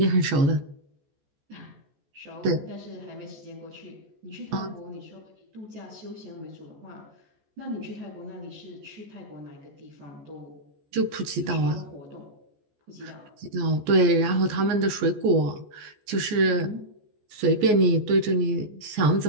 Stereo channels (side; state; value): left; late; 14 ms